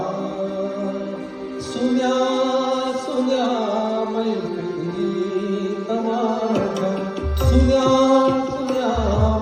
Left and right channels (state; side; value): identical; both; correlation 1.00